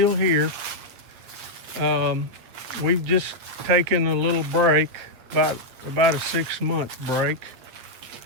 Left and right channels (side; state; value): left; late; 8.6 ms